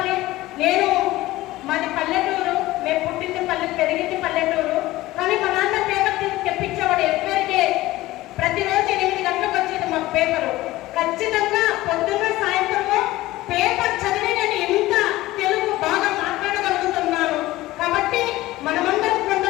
నేను మాది పల్లెటూరు, మేము పుట్టింది పెరిగింది పల్లెటూరు. కానీ మా నాన్న పేపర్ తెప్పించేవాడు ఎవ్వరికే. ప్రతిరోజు 8 గంటలకు వచ్చేది మాకు పేపరు. ఖచ్చితంగా పొద్దున్న సాయంత్రము పేపర్ చదివి నేను ఇంత తెలుగు బాగా మాట్లాడగలుగుతున్నాను. కాబట్టి మనమందరం,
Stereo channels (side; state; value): right; quieter; 17.5 dB